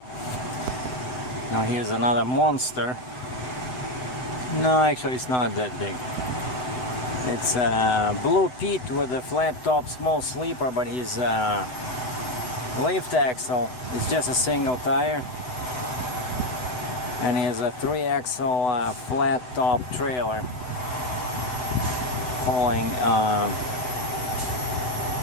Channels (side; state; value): right; late; 7.9 ms